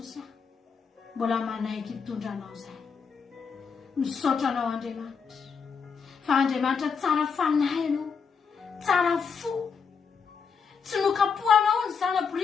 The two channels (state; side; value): quieter; right; 5.9 dB